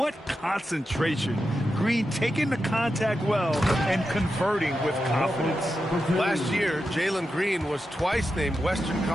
concentration. Green taking the contact well and converting with confidence. Last year, Jalen Green was twice named Western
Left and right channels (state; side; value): normal; both; correlation 0.89